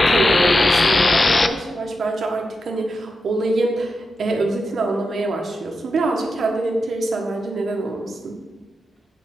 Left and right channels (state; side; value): normal; both; correlation 0.88